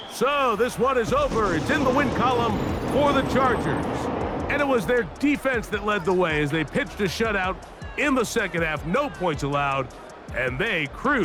So this one is over. It's in the win column for the Chargers. And it was their defense that led the way as they pitched a shutout in the second half. No points allowed, and they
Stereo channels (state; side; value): identical; both; correlation 1.00